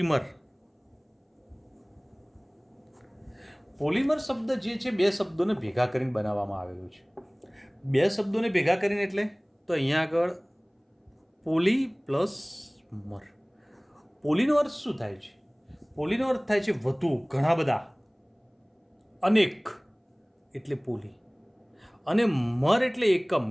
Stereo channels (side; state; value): both; identical; correlation 1.00